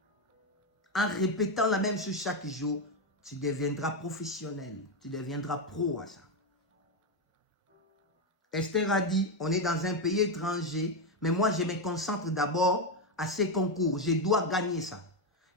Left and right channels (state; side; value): normal; both; correlation 0.08